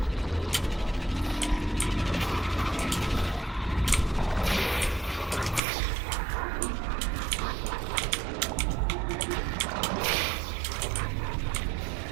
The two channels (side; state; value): left; drops out; at 5.6 s